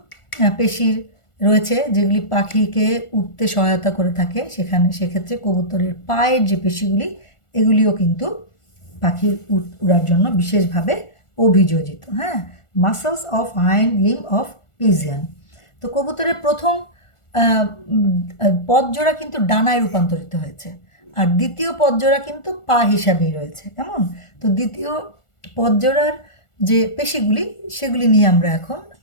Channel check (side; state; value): right; late; 1.4 ms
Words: পেশির রয়েছে যেগুলি পাখিকে উঠতে সহায়তা করে থাকে, সেক্ষেত্রে কবুতরের পায়ের যে পেশিগুলি, এগুলিও কিন্তু পাখির উড়ার জন্য বিশেষভাবে অভিযোজিত। হ্যাঁ, muscles of hind limb of pigeon. তো কবুতরের প্রথম পদজোড়া কিন্তু ডানায় রূপান্তরিত হয়েছে, আর দ্বিতীয় পদজোড়া কিন্তু পা হিসাবেই রয়েছে, কেমন? তো দ্বিতীয় পদজোড়ার যে পেশিগুলি, সেগুলি নিয়ে আমরা এখন